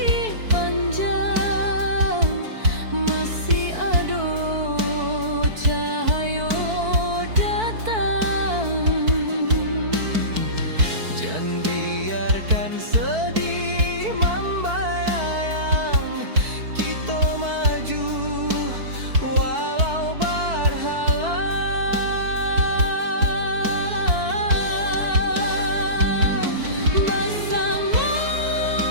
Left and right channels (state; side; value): late; left; 4.5 ms